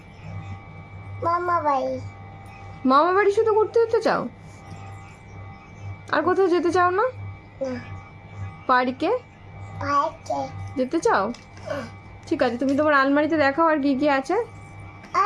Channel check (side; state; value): both; identical; correlation 1.00